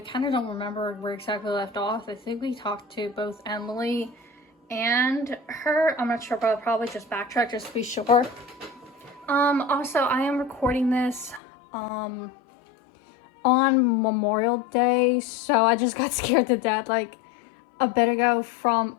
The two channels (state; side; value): drops out; right; at 11.4 s